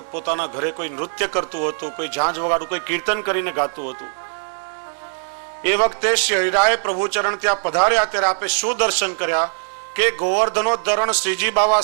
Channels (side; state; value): left; silent; digital silence